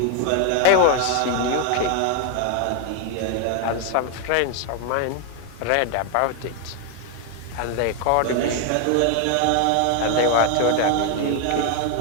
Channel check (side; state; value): both; different; correlation 0.01